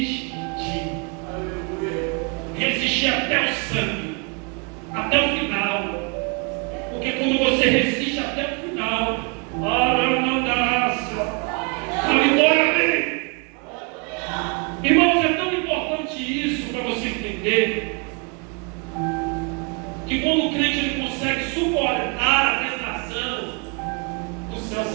Resistir até o sangue, até o final. Porque quando você resiste até o final, a vitória vem. Irmãos, é tão importante isso para você entender, que quando o crente ele consegue suportar a tentação, o céu se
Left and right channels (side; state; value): left; quieter; 34.7 dB